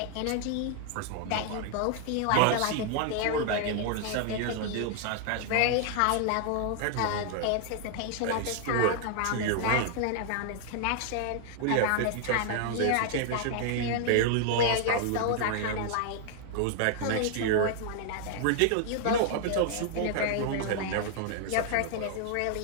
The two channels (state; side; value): different; both; correlation 0.00